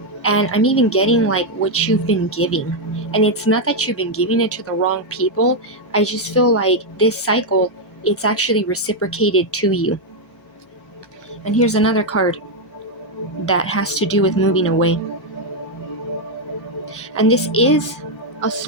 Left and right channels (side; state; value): both; normal; correlation 0.00